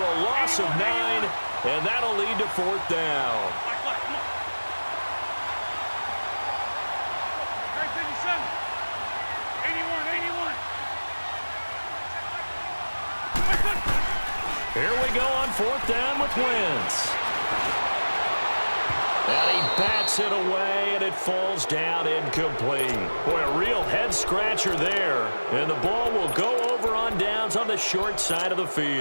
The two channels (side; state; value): both; inverted; correlation -1.00